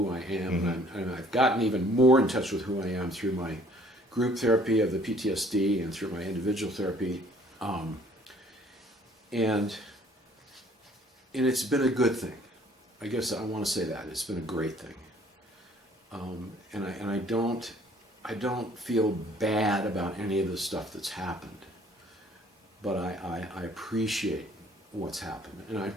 I am, and I've gotten even more in touch with who I am through my group therapy of the PTSD and through my individual therapy, and it's been a good thing. I guess I want to say that it's been a great thing, and I don't feel bad about any of the stuff that's happened, but I appreciate what's happened, and I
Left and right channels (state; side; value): normal; both; correlation 0.57